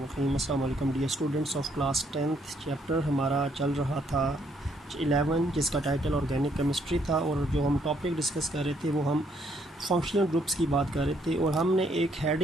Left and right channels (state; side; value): normal; both; correlation 0.70